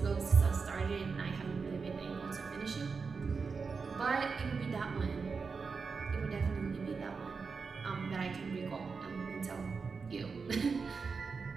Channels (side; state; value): left; quieter; 5.0 dB